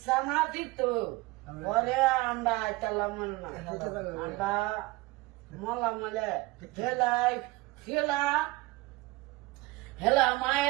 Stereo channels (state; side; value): quieter; left; 21.7 dB